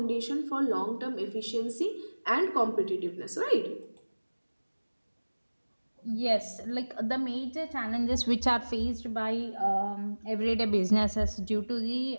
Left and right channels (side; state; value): both; inverted; correlation -1.00